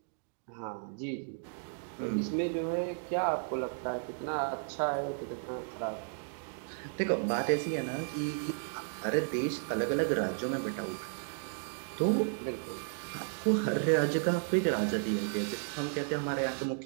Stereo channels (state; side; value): silent; left; digital silence